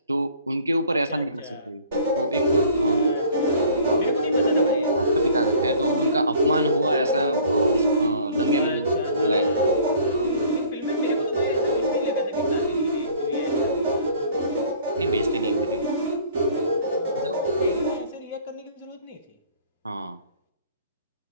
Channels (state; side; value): inverted; both; correlation -0.52